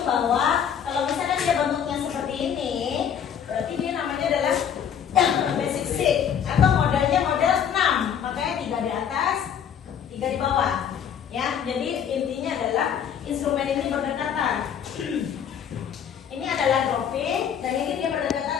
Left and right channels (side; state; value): right; quieter; 8.3 dB